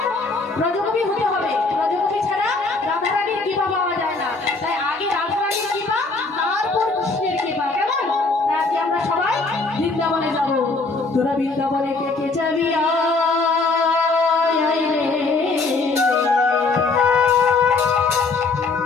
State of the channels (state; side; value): quieter; right; 3.8 dB